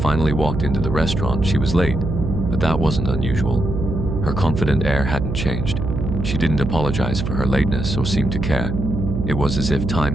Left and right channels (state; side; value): noise; right; hum, 3 dB below the sound